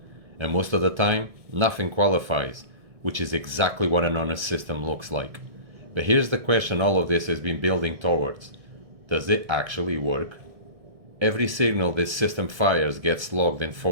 And most of the time, nothing qualifies, which is exactly what an honest system looks like. But here's the question all of this has been building towards. Does it actually work? Every signal this system fires gets logged and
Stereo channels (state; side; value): late; left; 1.6 ms